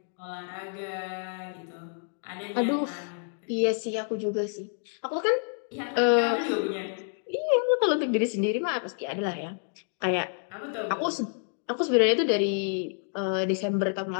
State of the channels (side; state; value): right; silent; 59 dB below the other